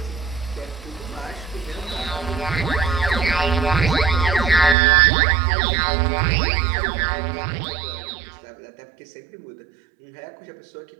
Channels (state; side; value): drops out; left; at 4.8 s